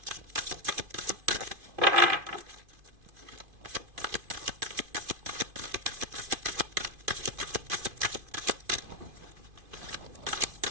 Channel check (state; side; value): late; left; 2.5 ms